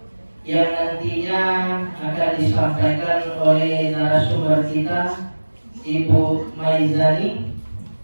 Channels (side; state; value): both; inverted; correlation -1.00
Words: yang nantinya akan disampaikan oleh narasumber kita Ibu Maizani.